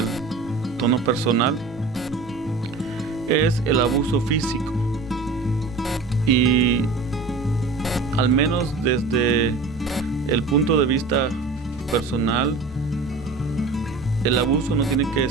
tono personal, es el abuso físico. Y al menos desde el punto de vista personal, el abuso no tiene que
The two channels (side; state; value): left; quieter; 3.7 dB